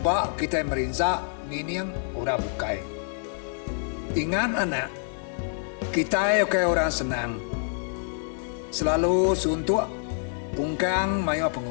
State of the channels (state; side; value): silent; right; digital silence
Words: kita merinsa nginiang orang bukai. Ingat anak. Kita oke orang senang. Selalu suntuk pungkang mayu